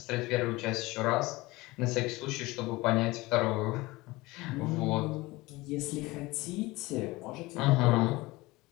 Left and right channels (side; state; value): right; quieter; 21.1 dB